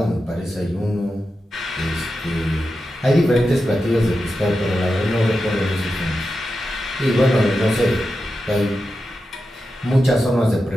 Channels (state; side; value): normal; both; correlation 0.90